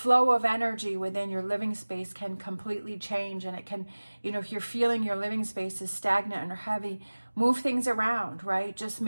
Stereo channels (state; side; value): inverted; both; correlation -1.00